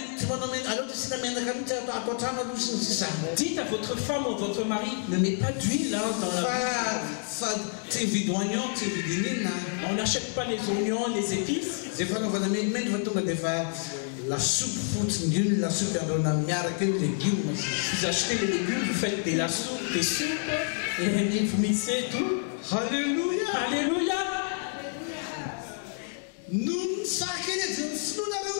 Dites à votre femme ou votre mari, ne mets pas d'huile dans la... On n'achète pas les oignons, les épices. Vous achetez les légumes, vous faites des soupes, et vous mixez tout. Alléluia. Alléluia.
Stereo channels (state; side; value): silent; right; 59 dB below the other